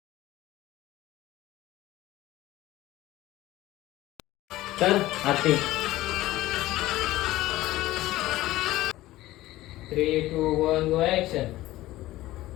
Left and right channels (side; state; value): right; quieter; 16.6 dB